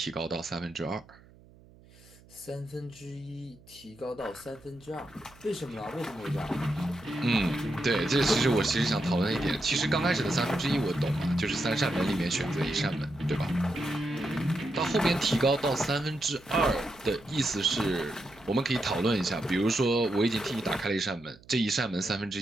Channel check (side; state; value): right; noise; hum, 25 dB below the sound